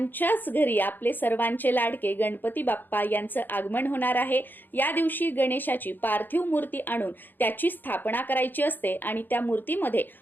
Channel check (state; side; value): late; right; 0.091 ms